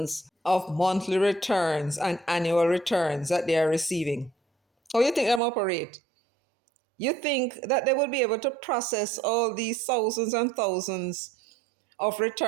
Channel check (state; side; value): drops out; left; at 5.4 s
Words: of monthly returns and annual returns that they are receiving? How you think them operate? You think that they will be able to process all these thousands and thousands of